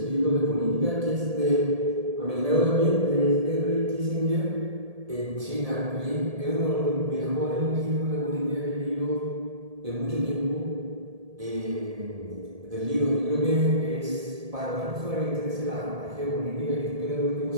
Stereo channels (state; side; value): late; left; 1.7 ms